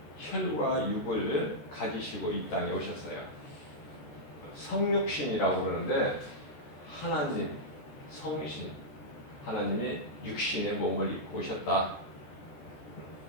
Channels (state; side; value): late; right; 14 ms